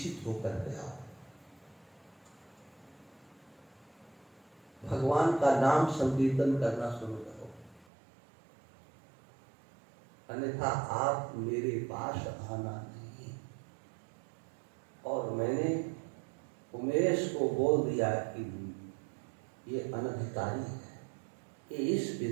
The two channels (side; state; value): left; drops out; at 7.9 s